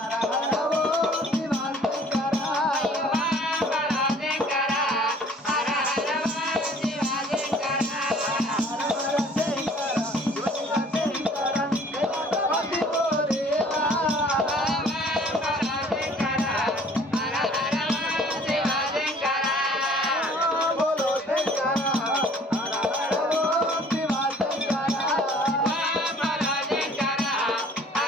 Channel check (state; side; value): normal; both; correlation 0.54